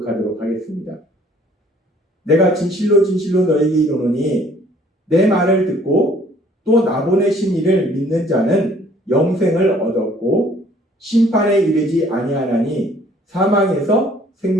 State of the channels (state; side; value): normal; both; correlation 0.58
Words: 하겠습니다. 내가 진실로 진실로 너에게 이르노니 내 말을 듣고 또 나 보내신 이를 믿는 자는 영생을 얻었고 심판에 이르지 아니하나니 사망에서